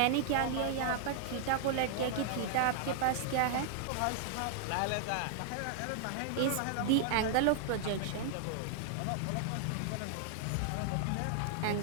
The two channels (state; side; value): different; both; correlation 0.00